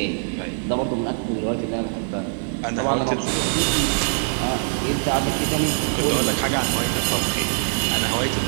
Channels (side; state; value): left; silent; digital silence